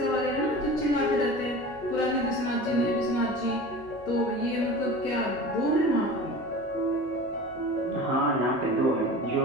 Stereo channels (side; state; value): both; normal; correlation 0.36